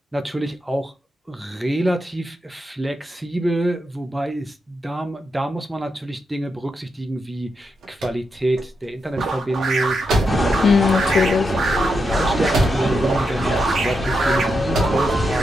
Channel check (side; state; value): both; normal; correlation 0.84